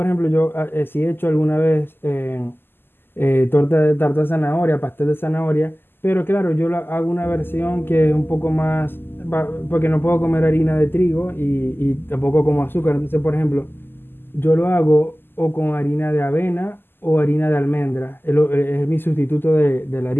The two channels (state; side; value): late; right; 0.10 ms